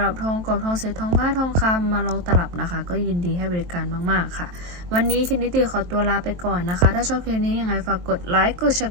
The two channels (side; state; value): left; late; 23 ms